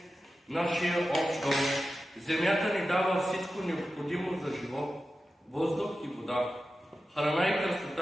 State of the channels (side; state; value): both; normal; correlation 0.93